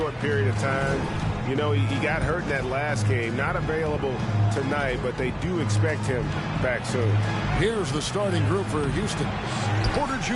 period of time. You know, he got hurt in that last game. Not available tonight, but they do expect him back soon. Here's the starting group for Houston. Porter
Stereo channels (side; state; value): both; identical; correlation 1.00